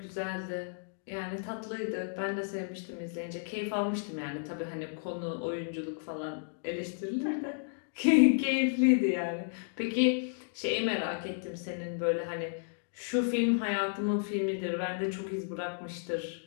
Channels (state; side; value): silent; right; digital silence